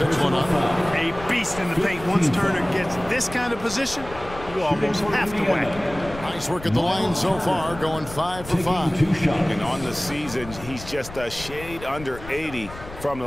one up. A beast in the paint. Once Turner gets this kind of position, you almost have to whack it. Nice work at the line so far, going 5 for 5. And on the season, he's just a shade under 80 from the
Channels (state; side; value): noise; left; rumble, 14 dB below the sound